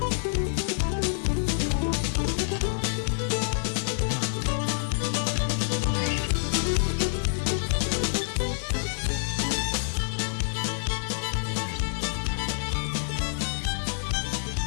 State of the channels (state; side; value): silent; right; 60 dB below the other